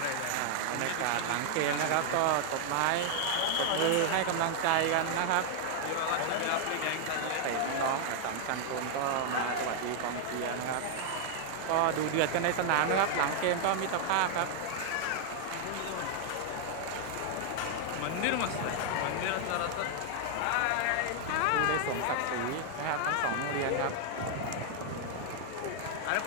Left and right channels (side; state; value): both; different; correlation 0.00